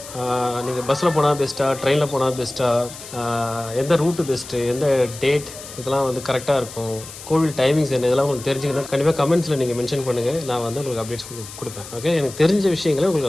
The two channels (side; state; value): left; noise; hiss, 14 dB below the sound